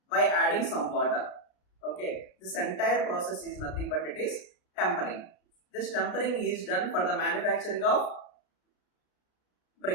by adding some water. Okay, this entire process is nothing but it is tempering. This tempering is done for the manufacturing of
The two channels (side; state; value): right; late; 33 ms